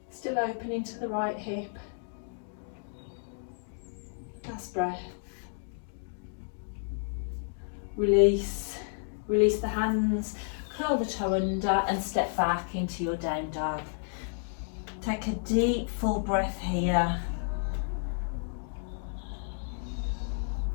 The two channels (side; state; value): right; silent; digital silence